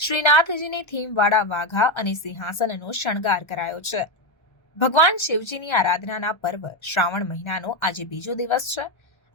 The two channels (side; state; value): right; late; 1.3 ms